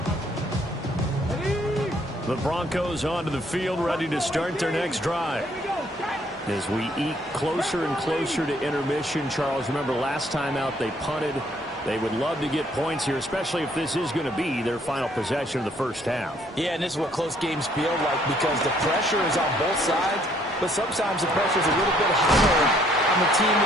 The Broncos onto the field, ready to start their next drive. As we eke closer and closer to intermission, Charles, remember last time out they punted. They would love to get points here, especially if this is going to be their final possession of the first half. Yeah, and this is what close games feel like because the pressure is on both sides, but sometimes the pressure is a little bit higher on the team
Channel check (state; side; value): normal; both; correlation 0.65